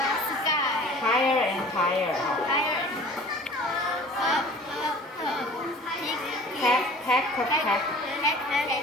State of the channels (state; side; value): normal; both; correlation 0.45